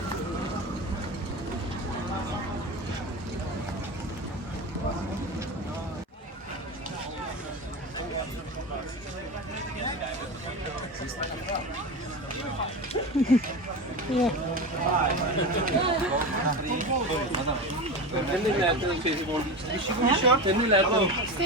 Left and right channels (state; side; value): normal; both; correlation 0.24